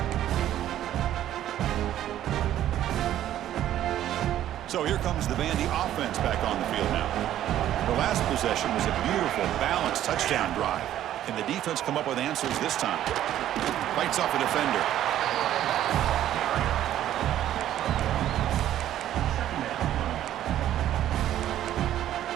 So here comes the Vandy offense back on the field now. The last possession was a beautiful, balanced touchdown drive. Can the defense come up with answers this time? Fights off a defender.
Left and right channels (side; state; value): left; quieter; 12.1 dB